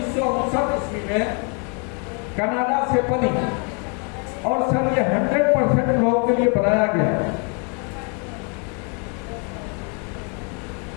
ईस्वी में कनाडा से बनी, और सर ये 100% लोगों के लिए बनाया गया।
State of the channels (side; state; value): right; quieter; 36.8 dB